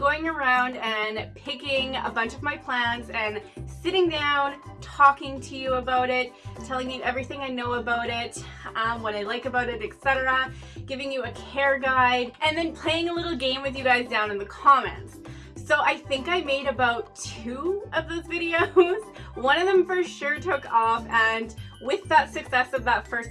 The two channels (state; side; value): identical; both; correlation 1.00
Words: around and picking a bunch of my plants and sitting down, talking to you about it, telling you everything I know about it, what I like about it, etc., giving you a care guide, and then playing a little game with you guys down in the comments. So I think I made about 2 of those videos. One of them for sure took off, and with that success of that